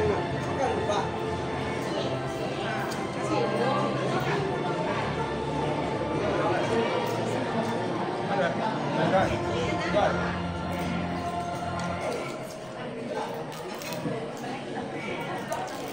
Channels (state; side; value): noise; left; rumble, 24 dB below the sound